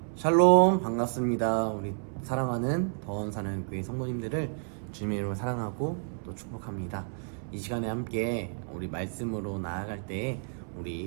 샬롬, 반갑습니다. 우리 사랑하는 더원사는 교회 성도님들을 주님의 이름으로 사랑하고 또 축복합니다. 이 시간에 함께 우리 말씀으로 나아갈 때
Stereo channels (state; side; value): silent; left; 58 dB below the other